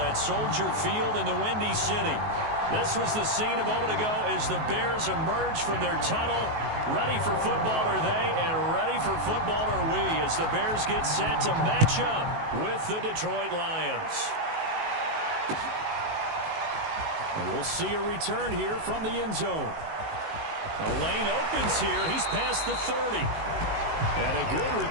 Soldier Field in the Windy City. This was the scene a moment ago as the Bears emerged from their tunnel. Ready for football are they, and ready for football are we as the Bears get set to match up with the Detroit Lions. And we'll see a return here from the end zone. The lane opens here. He's past the 30. And a good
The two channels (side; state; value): left; late; 19 ms